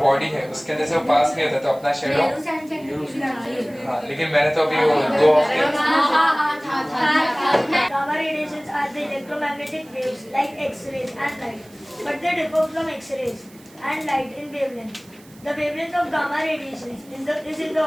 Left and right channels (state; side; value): noise; right; hiss, 26 dB below the sound